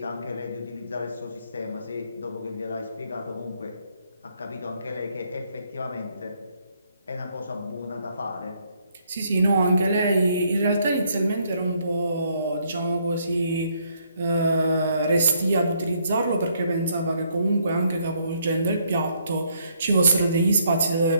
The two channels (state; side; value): inverted; both; correlation -0.70